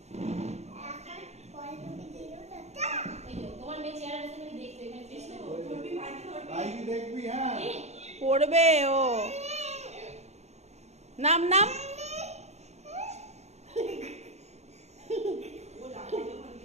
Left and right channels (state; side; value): late; left; 0.32 ms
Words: তোমার মেয়ে চেয়ারে বসে তুমি দেখবে এখানে বিষ্ণু ধরবি, ভাইকে দেখবি। হ্যাঁ পড়বে ও। নাম নাম